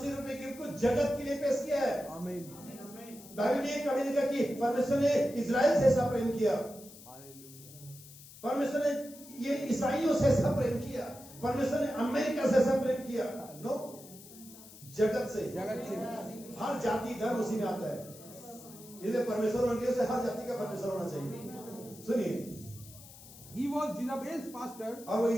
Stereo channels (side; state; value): left; noise; hiss, 18 dB below the sound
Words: रूपी गिफ्ट को जगत के लिए पेश किया है। आमीन। बाइबल ने कभी नहीं कहा कि परमेश्वर ने इजराइल से ऐसा प्रेम किया, परमेश्वर ने ये ईसाइयों से ऐसा प्रेम किया, परमेश्वर ने अमेरिका से ऐसा प्रेम किया। नो, जगत से, हर जाति धर्म उसी में आता है, इसलिए परमेश्वर मंडियों से हर जाति का परमेश्वर होना चाहिए। सुनिए, He was Jezebel's pastor. और वो